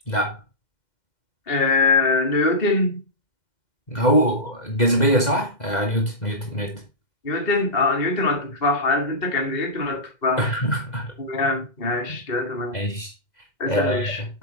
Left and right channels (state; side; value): late; right; 2.0 ms